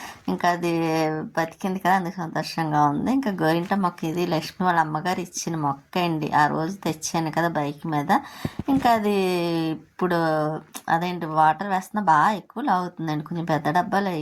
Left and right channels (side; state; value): both; identical; correlation 1.00